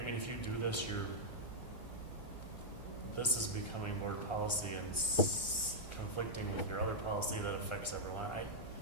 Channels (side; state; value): right; late; 2.1 ms